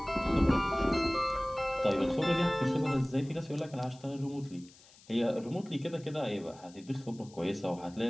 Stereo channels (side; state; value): left; noise; hiss, 25 dB below the sound